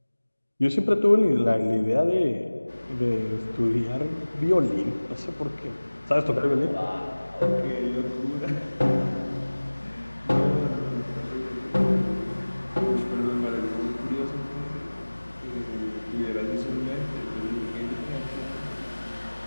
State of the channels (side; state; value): both; inverted; correlation -1.00